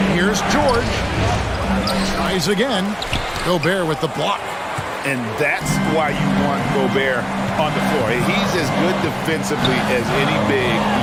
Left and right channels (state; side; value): identical; both; correlation 1.00